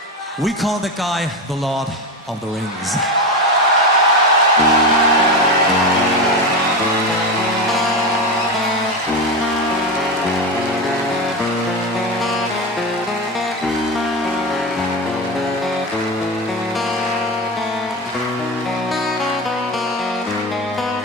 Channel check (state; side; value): normal; both; correlation 0.19